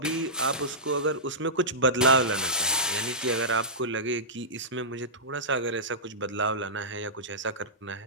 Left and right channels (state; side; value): normal; both; correlation -0.17